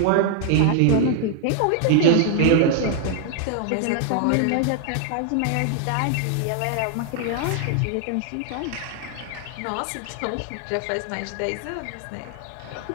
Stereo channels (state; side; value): different; both; correlation 0.00